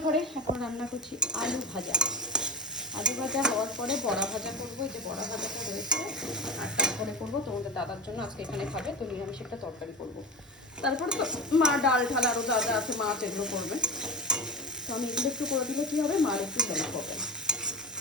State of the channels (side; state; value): both; normal; correlation 0.23